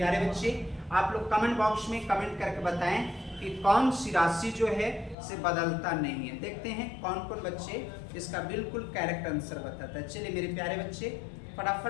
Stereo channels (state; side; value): drops out; right; at 5.2 s